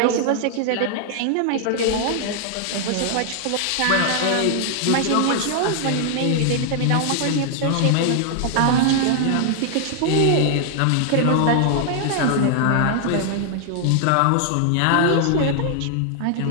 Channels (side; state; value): both; different; correlation 0.00